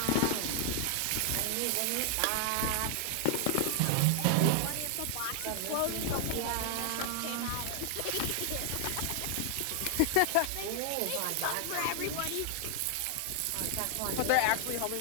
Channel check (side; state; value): both; different; correlation 0.00